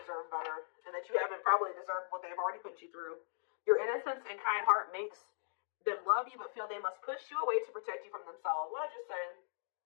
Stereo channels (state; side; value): silent; right; digital silence